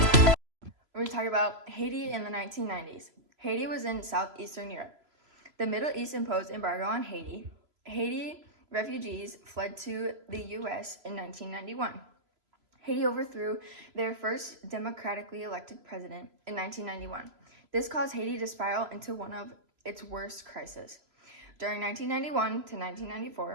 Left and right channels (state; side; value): late; left; 3.0 ms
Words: We're talking about Haiti in the 1990s. Haiti was in southeastern Europe. The Middle East imposed embargo on Haiti. Haiti refugees fled to the U.S. in 1991. Haiti overthrew their first democratically elected president in 1991. This caused Haiti to spiral into one of its worst crises. During 1991 to